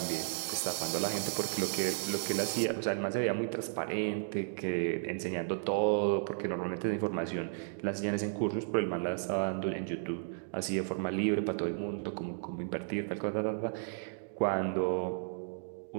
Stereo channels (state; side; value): silent; left; digital silence